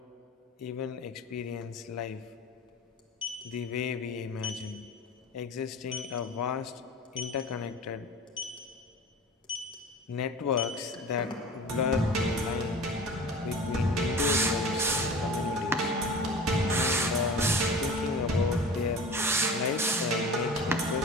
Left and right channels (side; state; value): both; normal; correlation 0.37